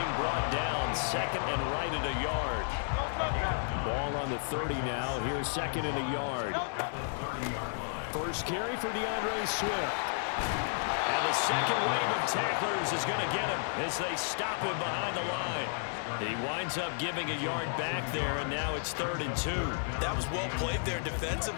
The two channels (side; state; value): right; silent; digital silence